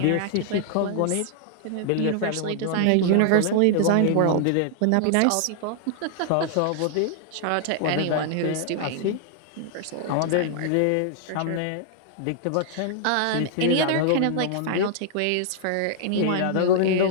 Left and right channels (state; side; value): different; both; correlation -0.01